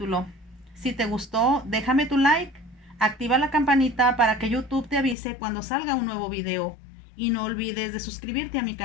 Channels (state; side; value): drops out; right; at 5.2 s